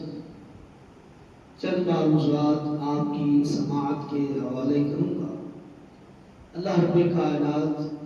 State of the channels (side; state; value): both; identical; correlation 1.00